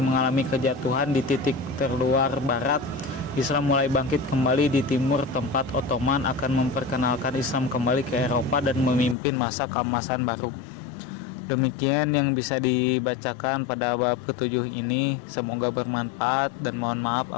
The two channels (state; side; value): drops out; right; at 9.2 s